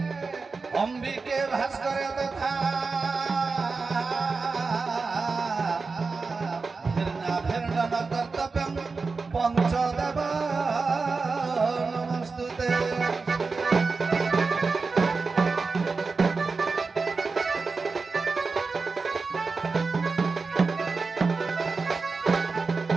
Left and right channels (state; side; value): quieter; left; 4.3 dB